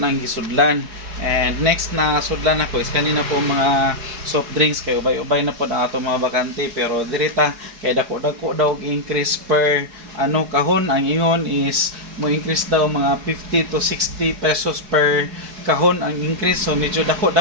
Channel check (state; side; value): late; left; 4.8 ms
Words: gisudlan. And next na sudlan ako is kanina po mga soft drinks, kay ubay-ubay na po ang ato mga bakante, pero dirita kay dako daw increase per kahon. Ang ingon is mo increase daw mga 50 to 60 pesos per kahon ang increase. So medyo dako